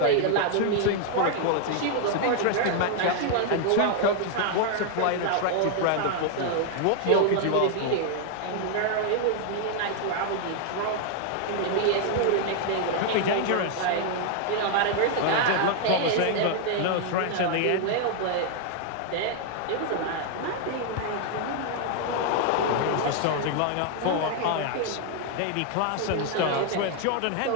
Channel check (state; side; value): different; both; correlation 0.00